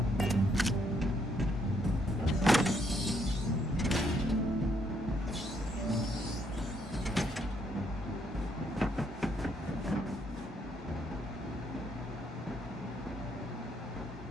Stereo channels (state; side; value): normal; both; correlation 0.72